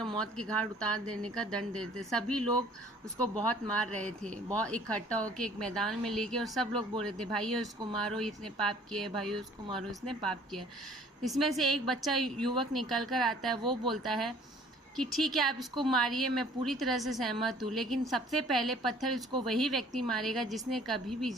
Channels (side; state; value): both; normal; correlation 0.54